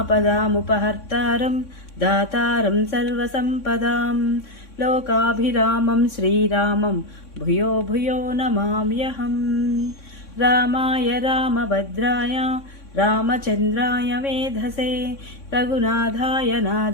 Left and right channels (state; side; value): late; right; 3.6 ms